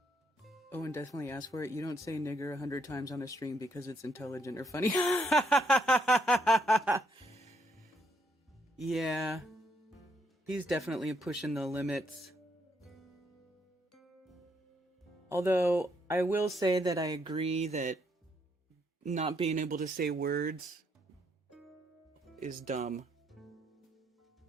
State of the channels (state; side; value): normal; both; correlation 0.74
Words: Owen definitely asked for it. You don't say nigger 100 times on a stream because it's intelligent or funny. Yeah. He's definitely pushing the limits. Although, I will say that I agree that not being able to say words is dumb.